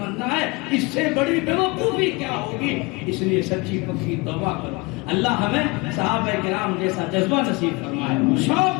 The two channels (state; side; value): quieter; right; 25.5 dB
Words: ہے. اس سے بڑی بیوقوفی کیا ہوگی؟ اس لیے سچی پکی توبہ کرو. اللہ ہمیں صحابہ کرام جیسا جذبہ نصیب فرمائے،